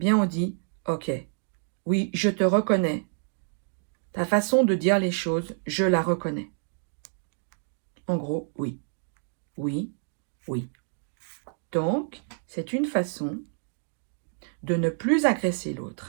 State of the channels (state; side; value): silent; left; digital silence